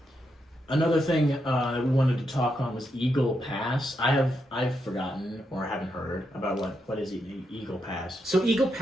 Another thing that we wanted to talk on was Eagle Pass. I've forgotten or haven't heard about what is Eagle Pass. So Eagle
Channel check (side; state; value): both; normal; correlation 0.82